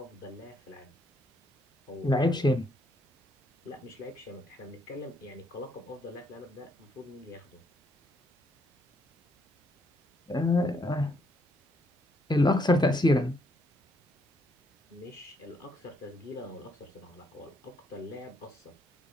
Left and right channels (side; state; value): both; normal; correlation 0.73